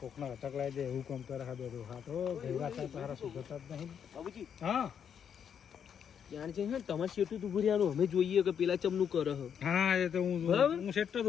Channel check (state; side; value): quieter; right; 8.0 dB